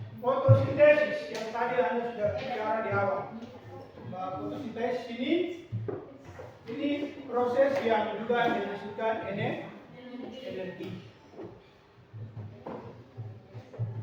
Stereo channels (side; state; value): both; identical; correlation 1.00